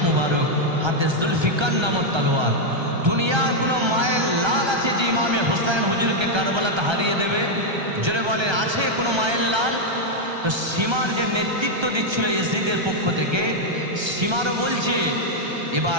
মুবারক, হাতে জুলফিকার নামক তলোয়ার। দুনিয়ার কোনো মায়ের লাল আছে যে ইমামে হুসাইন হুজুরকে কারবালাতে হারিয়ে দেবে? জোরে বলেন, আছে কোনো মায়ের লাল? তো সীমার যে নেতৃত্ব দিচ্ছিল ইয়াজিদের পক্ষ থেকে, সীমারও বলছে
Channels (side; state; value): left; late; 1.3 ms